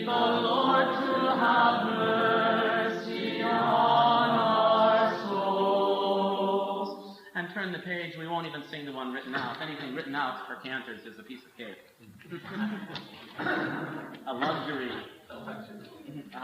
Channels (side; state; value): both; identical; correlation 1.00